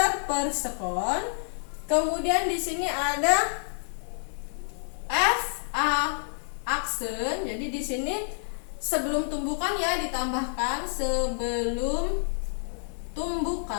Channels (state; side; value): silent; right; digital silence